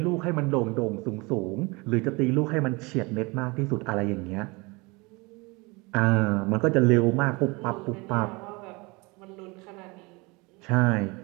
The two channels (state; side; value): quieter; left; 26.2 dB